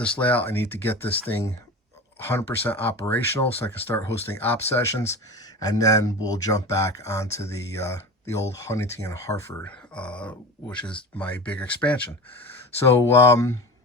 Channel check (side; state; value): both; normal; correlation 0.31